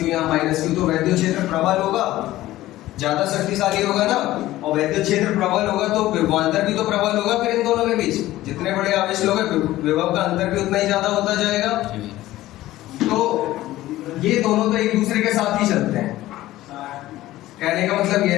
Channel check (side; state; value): right; quieter; 15.8 dB